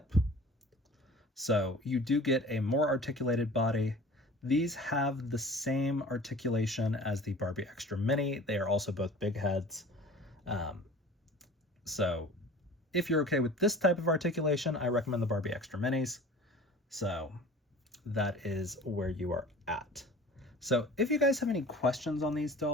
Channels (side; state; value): both; normal; correlation 0.43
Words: So you do get a more articulated body. These have the same articulation as the Barbie Extra Mini. They are also both big heads. So if you're okay with this type of articulation, I recommend the Barbie Extra Minis. So that is where you are at. So if you guys have any questions on these